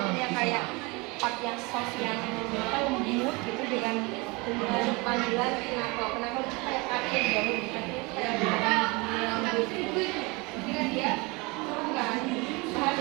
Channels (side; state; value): left; quieter; 26.1 dB